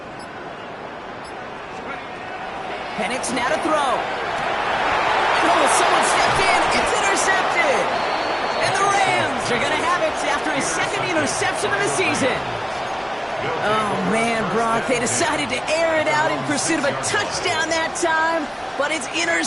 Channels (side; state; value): both; identical; correlation 1.00